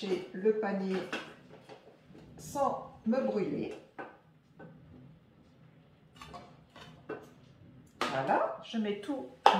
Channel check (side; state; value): both; identical; correlation 1.00